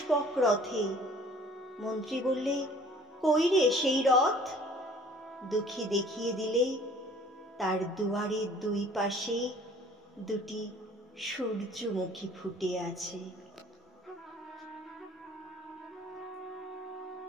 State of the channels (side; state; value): both; normal; correlation 0.52